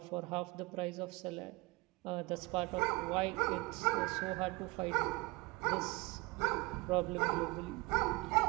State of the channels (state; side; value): quieter; left; 24.6 dB